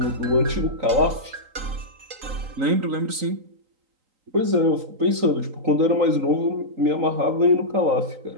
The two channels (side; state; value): left; late; 3.9 ms